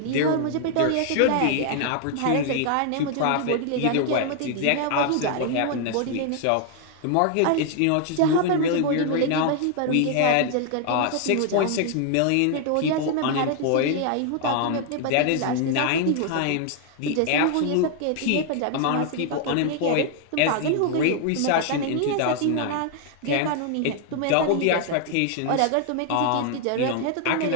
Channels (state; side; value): different; both; correlation 0.00